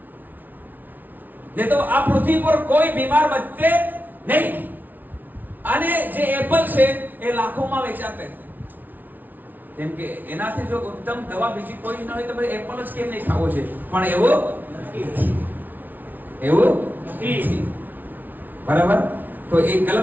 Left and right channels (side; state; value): left; late; 0.084 ms